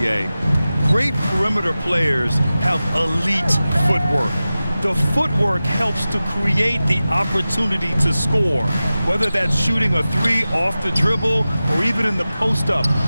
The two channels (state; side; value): inverted; both; correlation -0.95